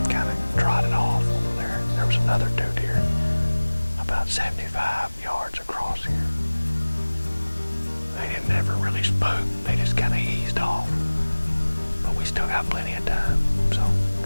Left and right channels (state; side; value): inverted; both; correlation -1.00